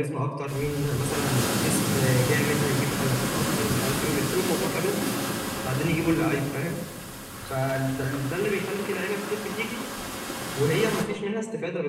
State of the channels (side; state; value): both; identical; correlation 1.00